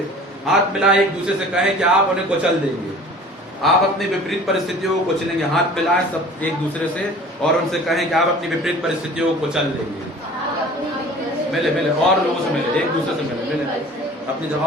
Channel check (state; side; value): normal; both; correlation 0.45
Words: हाथ मिलाए, एक दूसरे से कहें कि आप उन्हें कुचल देंगे। आप अपनी विपरीत परिस्थितियों को कुचलेंगे। हाथ मिलाएं सब एक दूसरे से और उनसे कहें कि आप अपनी विपरीत परिस्थितियों को कुचल देंगे। मिले मिले और लोगों से मिले, एक दूसरे से मिले, अपनी